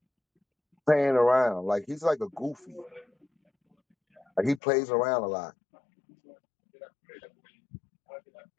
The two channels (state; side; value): drops out; right; at 4.6 s